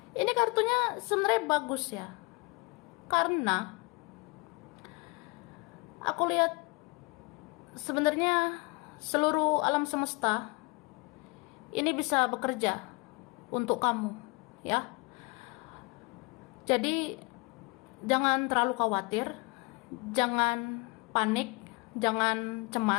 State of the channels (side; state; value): right; quieter; 27.6 dB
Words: Ini kartunya sebenarnya bagus ya, karena aku lihat sebenarnya seluruh alam semesta ini bisa bekerja untuk kamu, ya. Jadi jangan terlalu khawatir, jangan panik, jangan